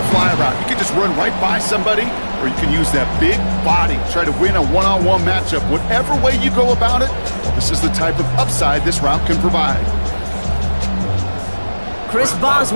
fly route. You can just run right by somebody, or you can use that big body, try to win a one-on-one matchup. Whatever way you go about it, this is the type of upside this route can provide. Chris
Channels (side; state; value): both; inverted; correlation -1.00